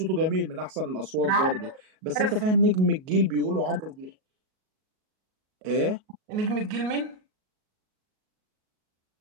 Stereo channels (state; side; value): late; left; 38 ms